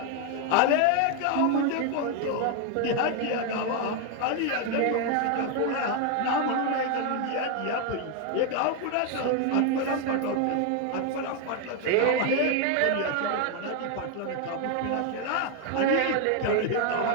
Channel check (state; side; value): different; both; correlation 0.01